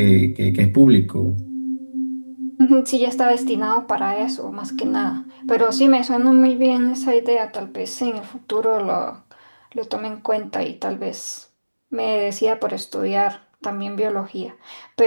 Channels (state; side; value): inverted; both; correlation -1.00